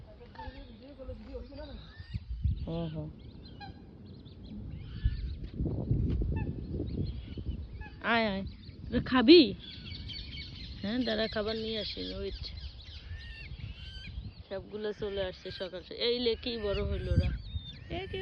আয় আয়, তোরা খাবি? হ্যাঁ দাঁড়া, খাবার নিয়ে আসি, ওয়েট। সবগুলো চলে আসছে সকাল সকাল। এই লে কি বড় হইল ওরা,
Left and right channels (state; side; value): identical; both; correlation 1.00